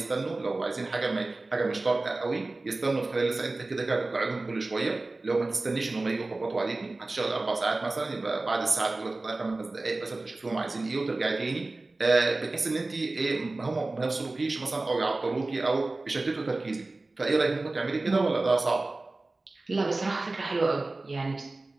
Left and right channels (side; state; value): left; quieter; 3.2 dB